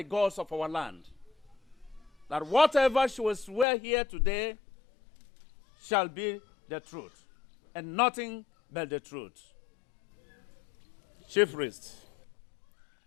gods of our land, that whatever she will swear here today shall be the truth, and nothing but the truth. Chief Priest.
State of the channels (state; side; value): drops out; right; at 3.7 s